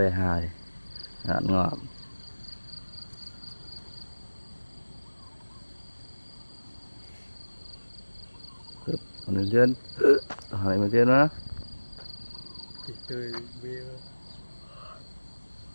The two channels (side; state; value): both; inverted; correlation -1.00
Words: hài ăn ngọt mình trên hỏi mình trên đó tươi bia